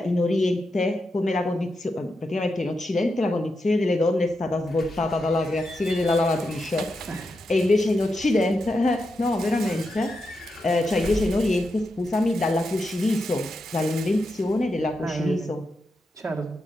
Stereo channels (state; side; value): normal; both; correlation 0.86